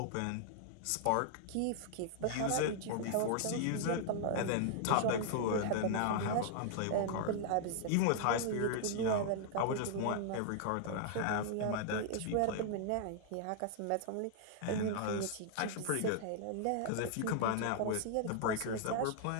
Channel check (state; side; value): different; both; correlation -0.01